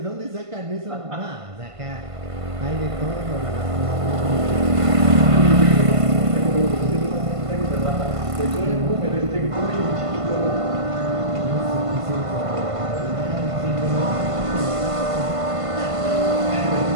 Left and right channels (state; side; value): late; left; 1.5 ms